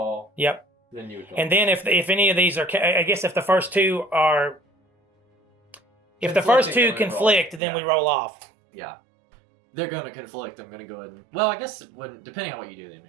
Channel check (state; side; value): drops out; left; at 7.6 s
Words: Yep. then you would call. And then if any of these are, I guess if the first 2 are, if the first 2 Conflicting, then we roll. conflict, then we Yeah. roll off. Yeah. They're going to conflict. I'm going to go ahead and... Well, I guess depending on what you do, they